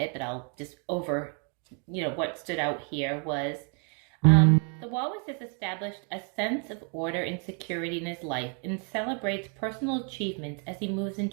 but I'll just what stood out here was the walrus has established a sense of order and security in his life and celebrates personal achievements as he moves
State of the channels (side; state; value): left; quieter; 39.8 dB